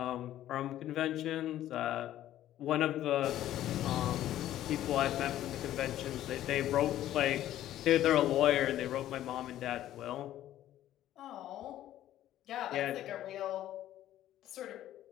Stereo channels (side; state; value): right; quieter; 12.9 dB